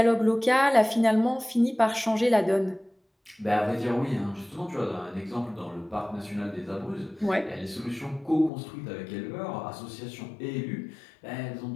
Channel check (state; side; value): drops out; right; at 8.5 s